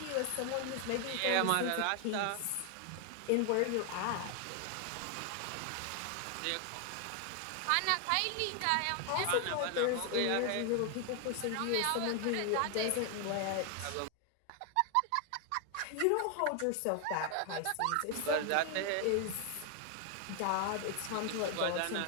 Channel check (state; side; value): different; both; correlation 0.00